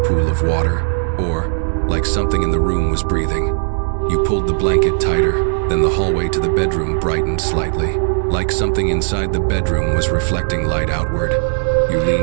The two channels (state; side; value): silent; left; digital silence